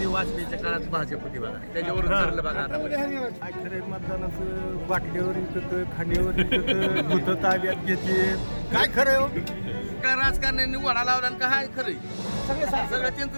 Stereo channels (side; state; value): both; inverted; correlation -1.00